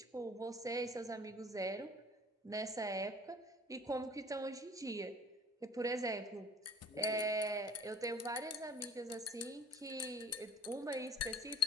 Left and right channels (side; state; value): both; normal; correlation 0.50